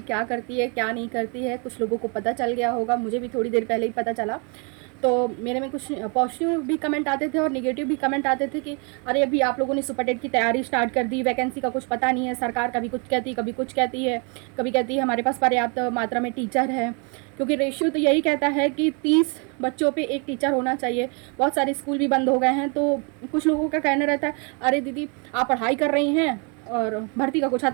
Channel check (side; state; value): left; quieter; 35.1 dB